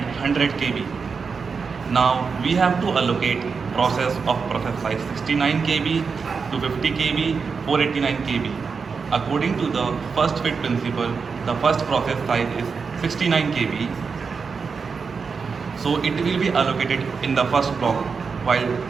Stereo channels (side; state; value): left; quieter; 5.3 dB